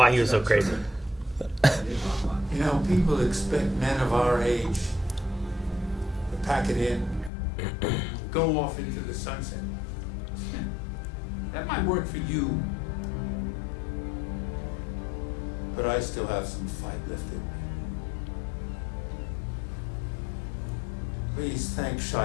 he was so crazy. You know, people expect men of our age to pack it in, go off into the sunset. That might work for you, but I still have some fight left in me. Please thank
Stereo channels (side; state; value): right; drops out; at 7.3 s